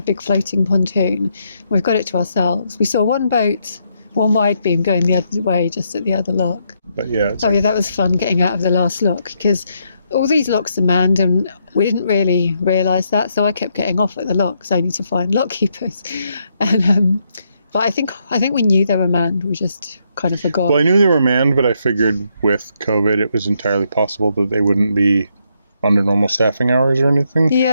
big floating pontoon. We've got it to ourselves. We saw one boat, one wide beam going the other way, just at the other lock. But yeah. Yeah, that was fun getting out of the last lock because all these locks are manned and we didn't really realise that. So I kept getting off at the locks only to find lock keepers. And but I think we knew they were manned. We just kind of forgot. Well, I knew they were manned, but I figured with COVID it was entirely possible that they wouldn't be under normal staffing hours or anything.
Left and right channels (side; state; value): both; inverted; correlation -0.77